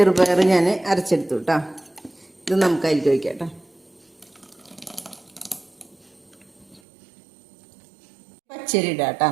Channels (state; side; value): drops out; left; at 6.8 s